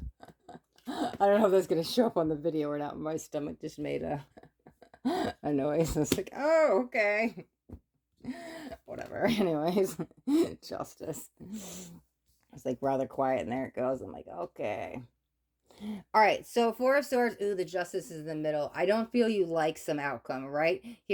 I don't know if that's going to show up on the video or not. My stomach just made a noise. I was like, oh, okay. Whatever. Anyways, Justice. It's like rather quiet, and there it goes. I'm like, okay. All right, so Four of Swords, ooh, the Justice is in the middle. I don't feel you like some outcome, right?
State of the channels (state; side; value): identical; both; correlation 1.00